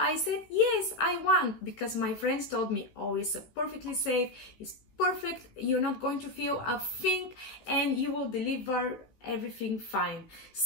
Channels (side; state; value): right; late; 16 ms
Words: said yes, I want, because my friends told me, oh, it's perfectly safe, it's perfect, you're not going to feel a thing, and you will deliver everything fine.